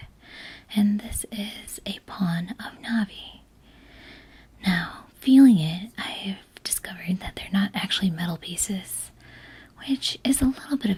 and this is a pawn of Navi. Now, feeling it, I've discovered that they're not actually metal pieces, which is a little bit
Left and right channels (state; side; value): identical; both; correlation 1.00